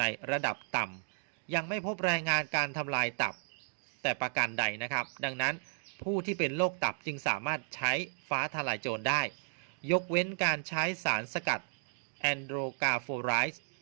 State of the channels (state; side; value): silent; left; digital silence